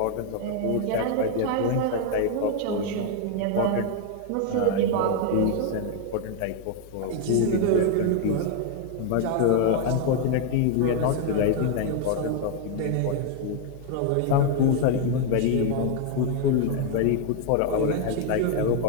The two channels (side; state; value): both; different; correlation 0.00